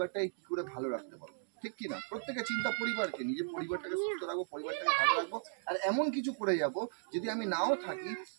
কি করে ভালো রাখতে পারবো, ঠিক কিনা? প্রত্যেকের চিন্তা পরিবারকে নিয়ে, যে পরিবারটাকে সুস্থ রাখবো, পরিবারটাকে ভালো রাখবো, আর এমন কিছু করে যাব যদি আমি নাও থাকি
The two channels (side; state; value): left; silent; digital silence